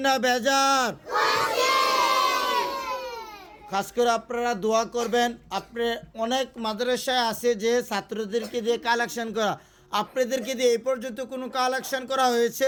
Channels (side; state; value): both; identical; correlation 1.00